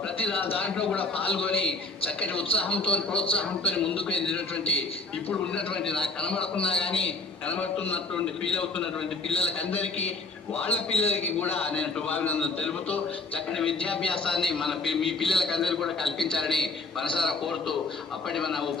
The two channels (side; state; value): right; quieter; 3.3 dB